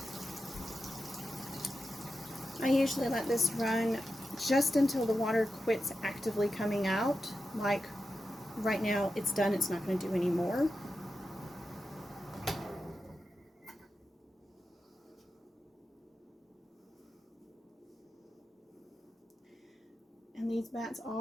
I usually let this run just until the water quits actively coming out. Like right now, it's done. It's not going to do any more. And these bats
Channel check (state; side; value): normal; both; correlation 0.90